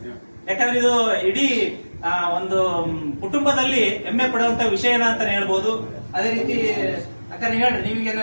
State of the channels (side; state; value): both; inverted; correlation -1.00